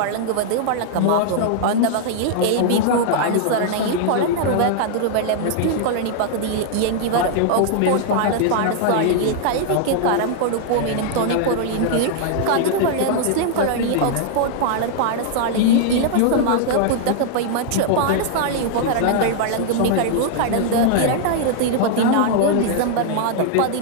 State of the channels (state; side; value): different; both; correlation -0.01